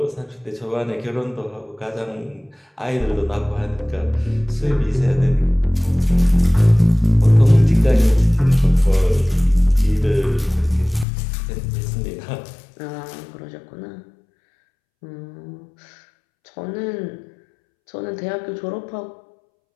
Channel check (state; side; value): drops out; right; at 11.1 s